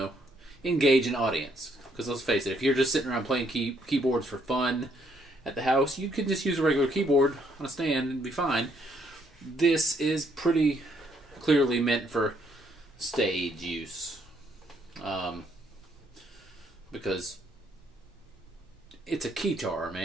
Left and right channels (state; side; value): normal; both; correlation 0.70